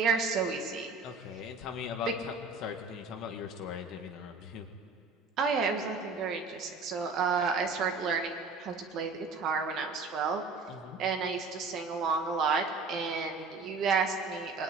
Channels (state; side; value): quieter; left; 4.0 dB